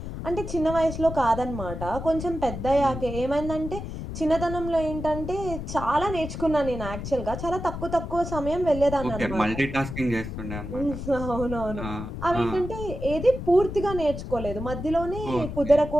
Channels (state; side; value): noise; left; rumble, 7 dB below the sound